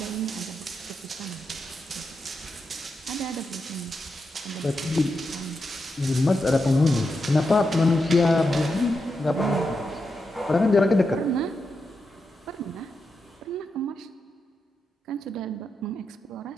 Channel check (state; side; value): normal; both; correlation 0.86